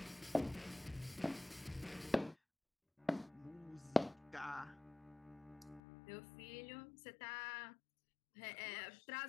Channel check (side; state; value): right; drops out; at 5.8 s